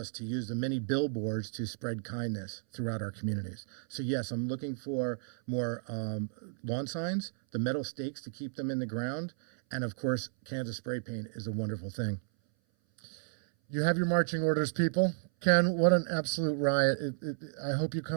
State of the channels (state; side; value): silent; left; 56 dB below the other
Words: to use the many billboards to spread kindness throughout our communities. So yes, I'm looking for more lawn signs, the metal stakes to keep them in the ground, and of course, cans of spray paint is a wonderful thing. You have your marching orders, people. Ken, what an absolute riot. I hope you